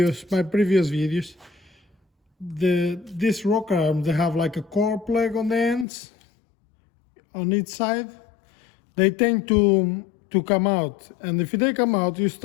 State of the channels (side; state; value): right; drops out; at 5.9 s